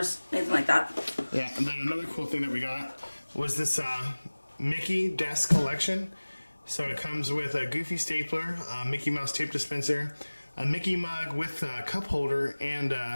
anything like that. Yeah, and then another cool thing that we got was this Mickey desk collection. So it comes with a Goofy stapler, a Mickey Mouse tape dispenser, a Mickey mug with a cup holder, and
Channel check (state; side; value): inverted; both; correlation -1.00